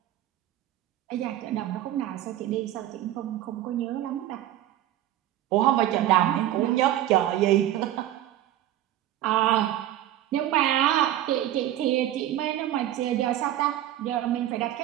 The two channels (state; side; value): quieter; left; 13.0 dB